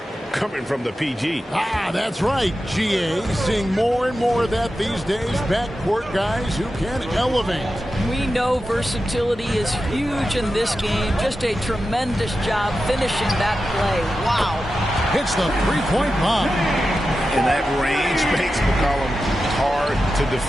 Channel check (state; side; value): normal; both; correlation 0.91